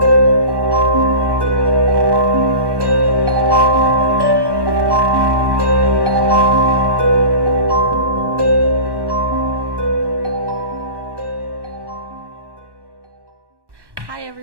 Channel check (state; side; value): late; left; 1.1 ms